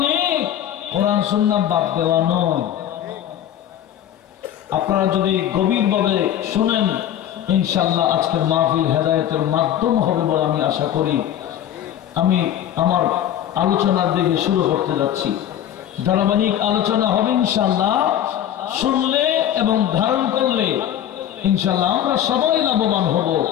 কোরআন সুন্নাহ বাদ দেওয়া নয় আপনারা যদি গভীরভাবে শুনেন ইনশাআল্লাহ আজকের মাহফিল হেদায়েতের মাধ্যম হবে বলে আমি আশা করি আমি আমার আলোচনার দিকে শুরু করতে যাচ্ছি ধারাবাহিক আলোচনা হবে ইনশাআল্লাহ শুনলে এবং ধারণ করলে ইনশাআল্লাহ আমরা সবাই লাভবান হব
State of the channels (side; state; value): right; quieter; 10.8 dB